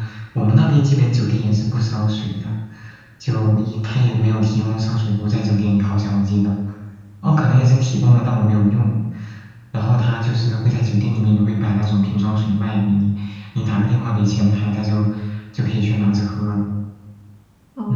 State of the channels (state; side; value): identical; both; correlation 1.00